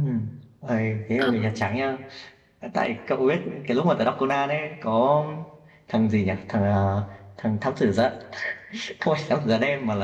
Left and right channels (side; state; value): both; identical; correlation 1.00